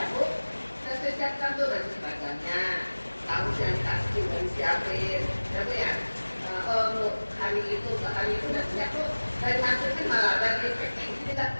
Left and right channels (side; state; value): both; inverted; correlation -1.00